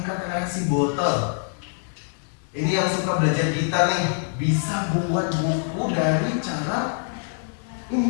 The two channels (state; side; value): silent; right; 62 dB below the other